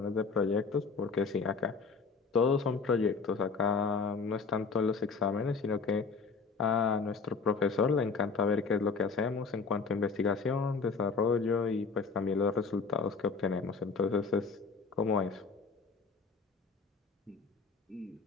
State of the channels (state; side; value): quieter; right; 4.8 dB